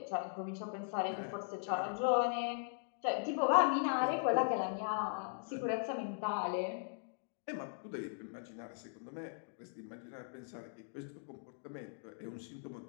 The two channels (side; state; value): right; silent; digital silence